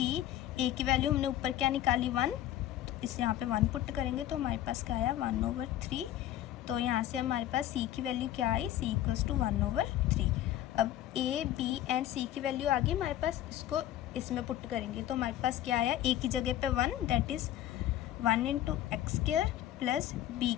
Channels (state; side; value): quieter; right; 12.7 dB